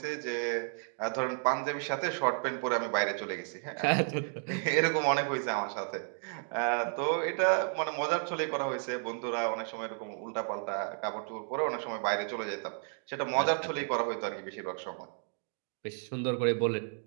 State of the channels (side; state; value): left; silent; 56 dB below the other